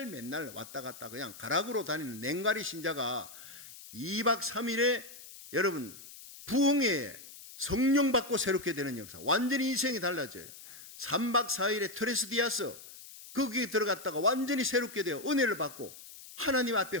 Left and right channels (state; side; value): noise; left; hiss, 16 dB below the sound